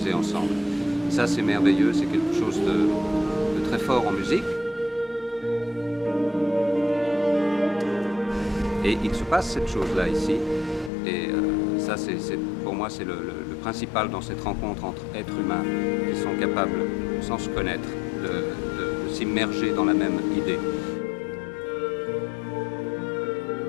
ensemble ?» Ça, c'est merveilleux, c'est quelque chose de très fort en musique. Et il se passe cette chose-là ici, et ça, pour moi, c'est le principal dans cette rencontre entre êtres humains qui sont capables, sans se connaître, de s'immerger dans la même idée.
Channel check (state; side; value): drops out; right; at 10.9 s